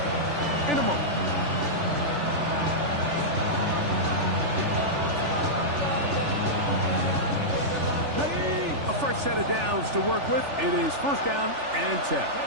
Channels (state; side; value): late; left; 3.4 ms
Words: in a moment. A fresh set of downs to work with. It is 1st down and 10.